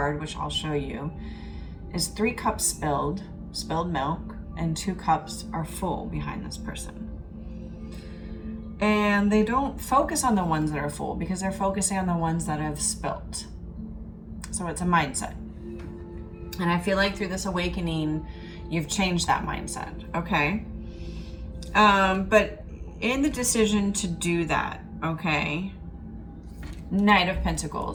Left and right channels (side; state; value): both; identical; correlation 1.00